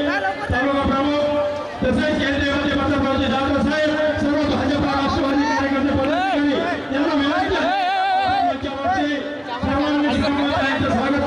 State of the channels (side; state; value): both; identical; correlation 1.00